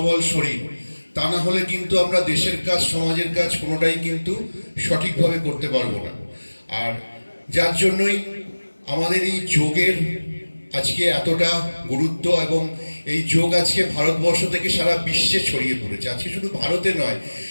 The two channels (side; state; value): both; inverted; correlation -1.00